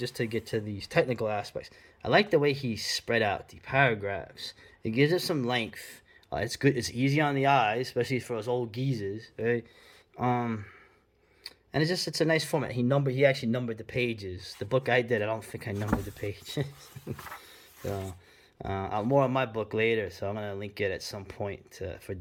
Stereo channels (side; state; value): both; identical; correlation 1.00